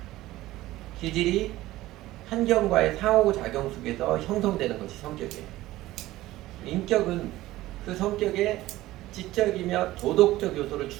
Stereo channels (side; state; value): left; quieter; 16.5 dB